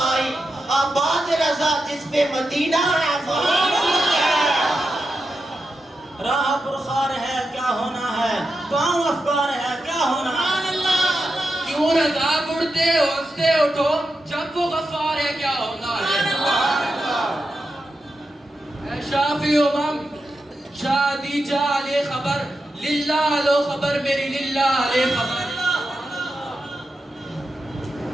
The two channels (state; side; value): normal; both; correlation 0.89